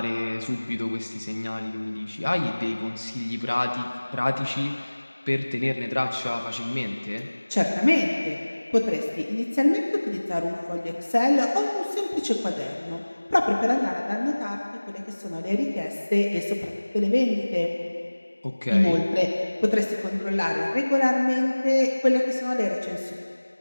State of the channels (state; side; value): inverted; both; correlation -1.00